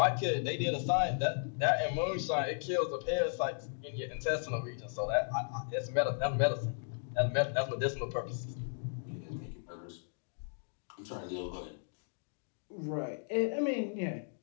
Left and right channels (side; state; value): right; silent; digital silence